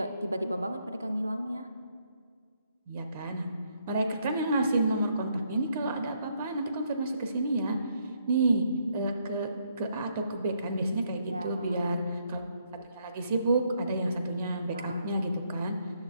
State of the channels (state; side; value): inverted; both; correlation -0.73